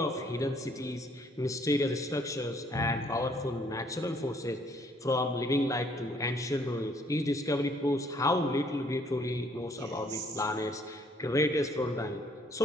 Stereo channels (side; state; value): both; normal; correlation 0.63